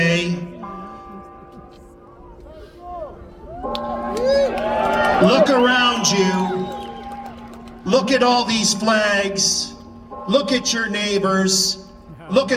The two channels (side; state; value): both; identical; correlation 1.00